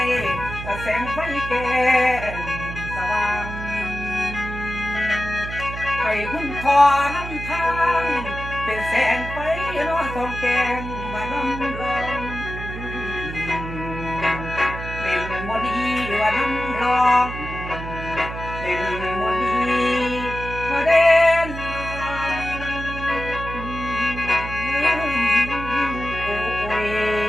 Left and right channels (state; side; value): noise; right; hum, 8 dB below the sound